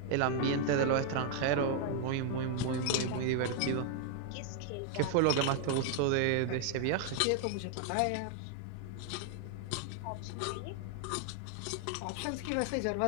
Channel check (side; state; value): both; different; correlation 0.00